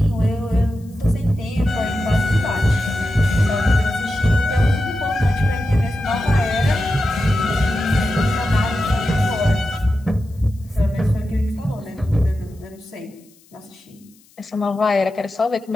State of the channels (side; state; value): left; noise; hiss, 30 dB below the sound